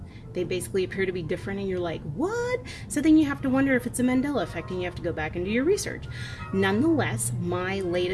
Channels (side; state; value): both; identical; correlation 1.00